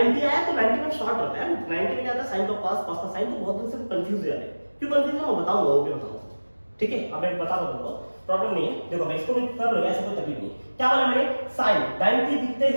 आया तो 90 में शॉर्ट होता है, 90 में क्या आता है साइन का cos, cos का sin, तो बहुत दिन से कंफ्यूज हो जाते हैं, क्यों कंफ्यूज है मैं बताऊंगा, वो भी बताऊंगा, ठीक है। अब मैं बता दूं तुमको, प्रॉब्लम नहीं है, देखो मैं इसको भी कर लूंगा, ऐसा कोई तकलीफ नहीं, क्या बोला मैंने, sin 90 दिखते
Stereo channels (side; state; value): both; inverted; correlation -1.00